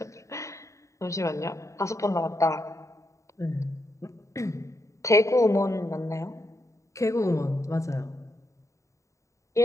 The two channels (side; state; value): right; late; 0.15 ms